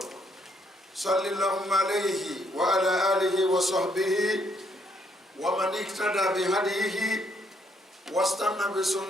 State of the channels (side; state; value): both; normal; correlation 0.71